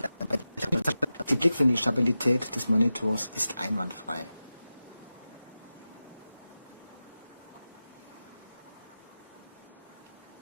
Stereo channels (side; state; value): both; inverted; correlation -0.93